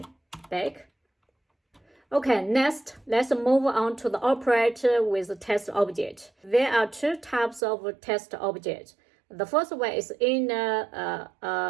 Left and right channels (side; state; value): left; drops out; at 7.6 s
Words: back. Okay, next, let's move on to the operator with the text object. There are 2 types of text object. The first one is inner